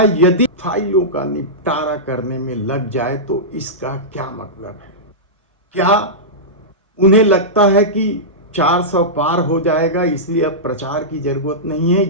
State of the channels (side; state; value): both; normal; correlation -0.14